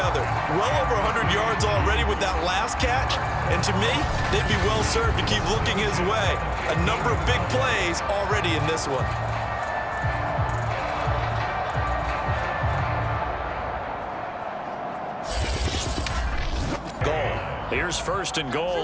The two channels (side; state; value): both; identical; correlation 1.00